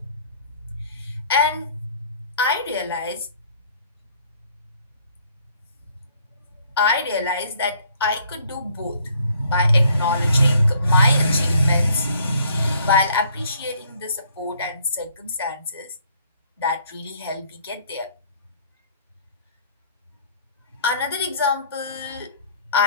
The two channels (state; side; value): inverted; both; correlation -0.61